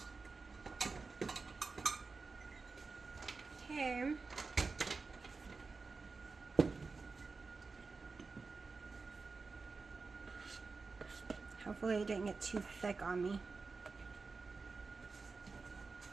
Okay. Hopefully it didn't get too thick on me.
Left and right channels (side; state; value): left; quieter; 4.3 dB